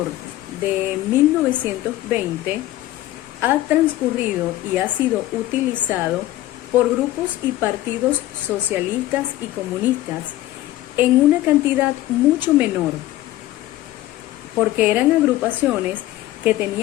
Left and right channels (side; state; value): right; quieter; 15.4 dB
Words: de 1920 ha transcurrido y ha sido utilizado por grupos y partidos socialistas y comunistas en una cantidad mucho menor, porque eran agrupaciones que